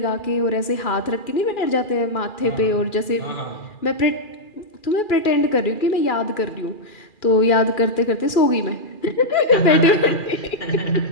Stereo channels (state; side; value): late; right; 2.4 ms